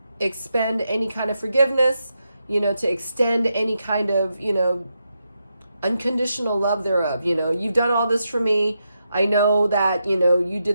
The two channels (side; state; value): both; inverted; correlation -0.85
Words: expend any kind of forgiveness, you know, to extend any kind of, you know, unconditional love thereof. You know, you've done all this for me. I know that, you know, you